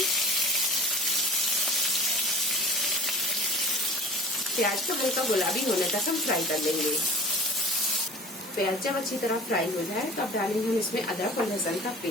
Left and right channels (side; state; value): both; normal; correlation 0.43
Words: प्याज को हल्का गुलाबी होने तक हम फ्राई कर लेंगे। प्याज जब अच्छी तरह फ्राई हो जाए तो अब डालेंगे हम इसमें अदरक और लहसुन का